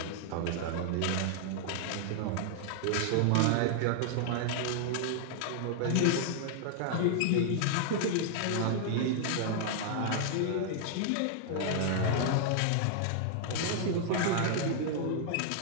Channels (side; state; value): both; different; correlation -0.01